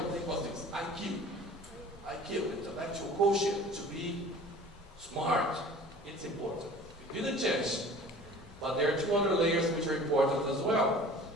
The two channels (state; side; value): normal; both; correlation 0.45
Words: thing was this, IQ. IQ, intellectual quotient, to be smart. It's important. You didn't change. But there are two other layers which are important as well.